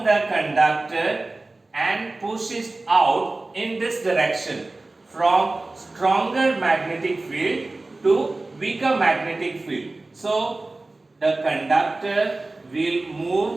the conductor and push it out in this direction from stronger magnetic field to weaker magnetic field. So the conductor will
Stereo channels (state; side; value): quieter; left; 3.1 dB